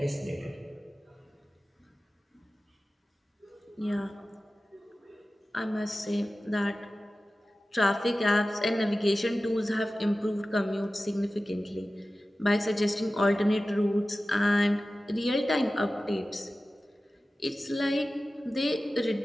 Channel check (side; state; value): both; normal; correlation 0.95